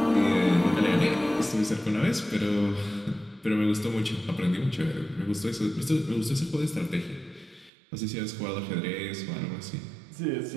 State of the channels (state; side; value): drops out; left; at 7.7 s